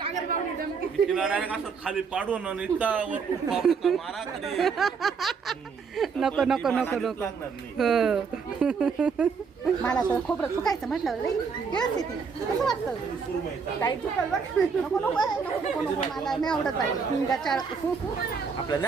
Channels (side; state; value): left; quieter; 5.6 dB